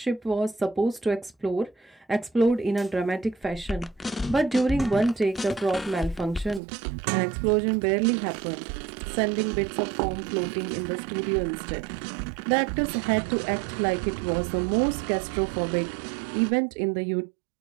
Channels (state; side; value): drops out; left; at 6.6 s